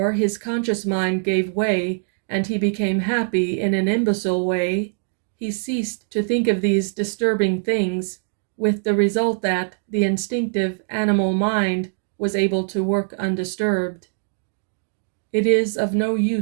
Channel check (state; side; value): silent; left; 64 dB below the other